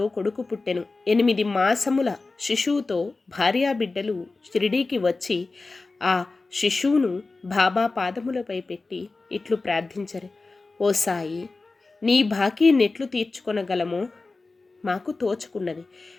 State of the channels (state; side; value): quieter; right; 3.6 dB